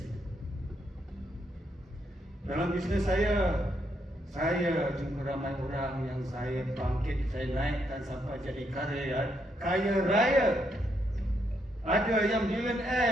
Dalam bisnes saya jumpa ramai orang yang saya bangkit, saya naikkan sampai jadi kaya raya. Ada yang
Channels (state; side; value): normal; both; correlation 0.77